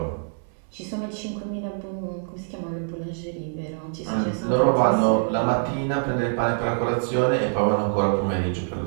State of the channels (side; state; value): left; silent; 62 dB below the other